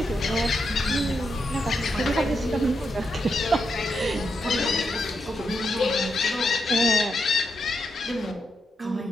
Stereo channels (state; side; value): normal; both; correlation 0.83